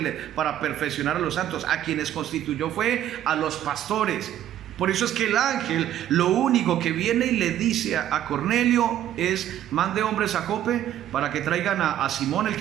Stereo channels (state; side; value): quieter; left; 11.6 dB